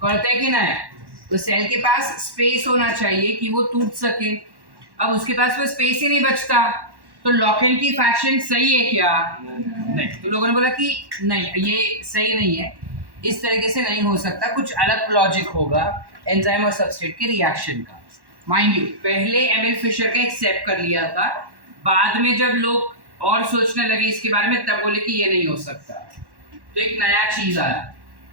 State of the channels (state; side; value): late; left; 1.1 ms